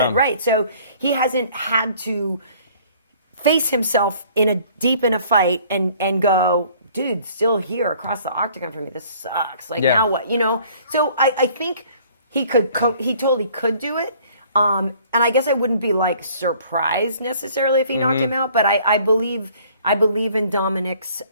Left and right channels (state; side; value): inverted; both; correlation -0.56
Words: right? So he hasn't had to face himself deep in a fight and go, dude, still here across the octagon from me. This sucks. Like now what? So I think he totally could do it. And I guess I wouldn't be like surprised necessarily if he knocked him out, but I believe in Dominick's